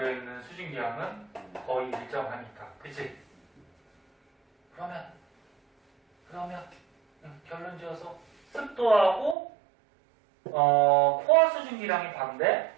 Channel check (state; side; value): drops out; left; at 9.3 s